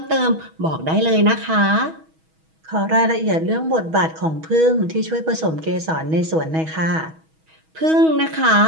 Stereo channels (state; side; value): late; left; 6.2 ms